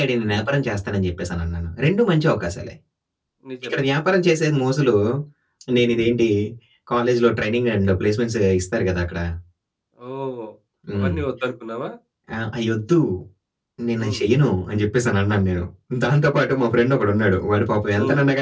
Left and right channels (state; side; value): identical; both; correlation 1.00